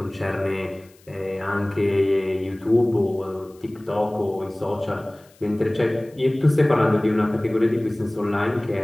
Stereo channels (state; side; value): noise; left; hiss, 29 dB below the sound